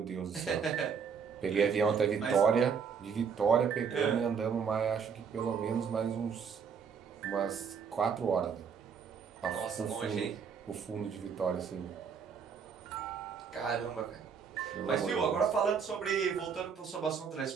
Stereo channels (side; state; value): left; quieter; 6.5 dB